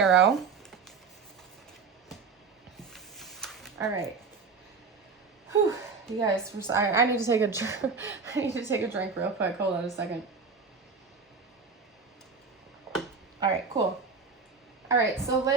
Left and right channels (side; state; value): left; quieter; 5.0 dB